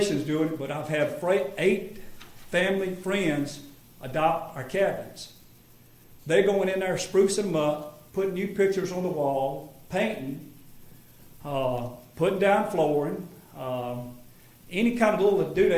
doing it, but I've had 8 family friends adopt our cabins. They're going in there, sprucing them up, putting new pictures on the wall, painting, putting down flooring, any kind of little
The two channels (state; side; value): identical; both; correlation 1.00